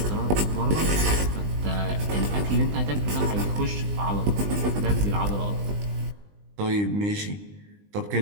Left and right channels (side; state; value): left; late; 20 ms